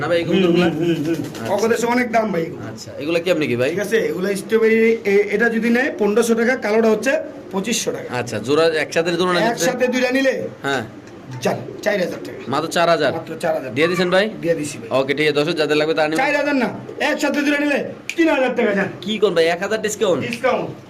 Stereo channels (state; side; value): identical; both; correlation 1.00